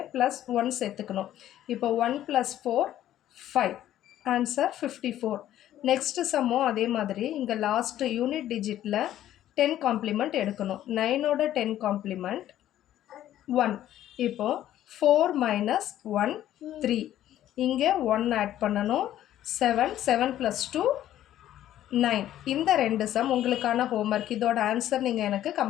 +1 சேர்த்துக்கணும். இப்போ 1 + 4 5. ஆன்சர் 54. நெக்ஸ்ட்டு சம்மும் அதே மாதிரி இங்கே லாஸ்ட் யூனிட் டிஜிட்டில் 10 காம்ப்ளிமெண்ட் எடுக்கணும். 9ஓட 10 காம்ப்ளிமெண்ட் 1. இப்போது 4 - 1 3. இங்கே 1 ஆட் பண்ணணும். 7 + 2 9. இந்த 2 சம் உங்களுக்கான ஹோம்ஒர்க். இதோட ஆன்சர் நீங்கள் எனக்கு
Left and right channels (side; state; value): right; quieter; 12.4 dB